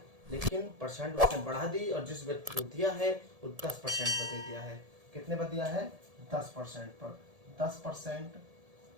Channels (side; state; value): left; late; 1.7 ms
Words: लेकिन परसेंट उसने बढ़ा दी और जिस व्यक्ति को दिया है वो 10% पर दे दिया है। कितने पर दिया है, 10% पर। 10%,